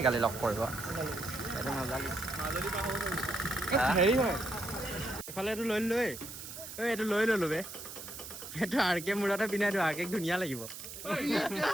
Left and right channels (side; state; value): right; noise; hiss, 11 dB below the sound